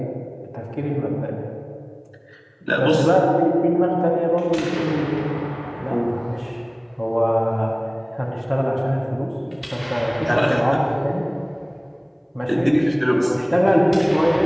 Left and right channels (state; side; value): identical; both; correlation 1.00